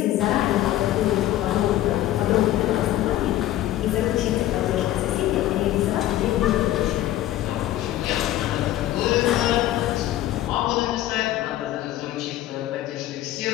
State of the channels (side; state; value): right; quieter; 14.0 dB